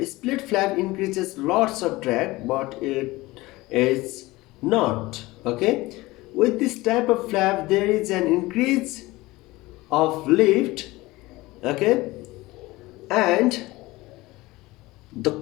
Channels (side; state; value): right; quieter; 20.1 dB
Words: split flap increases lots of drag, but it is not. Okay, with this type of flap there is an increase of lift. Okay, and the